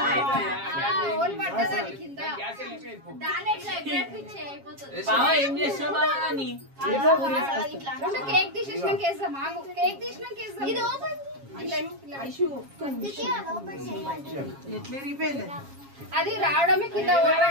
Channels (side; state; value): left; late; 7.3 ms